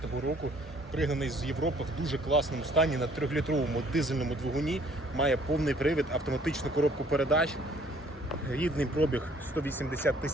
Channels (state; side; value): normal; both; correlation 0.59